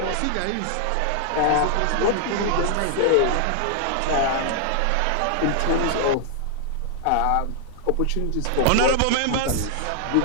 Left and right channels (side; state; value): both; different; correlation -0.01